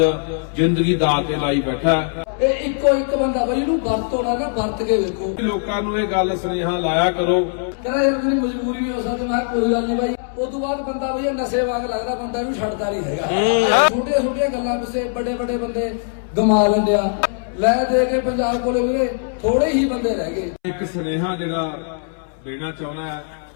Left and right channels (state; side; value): silent; right; 65 dB below the other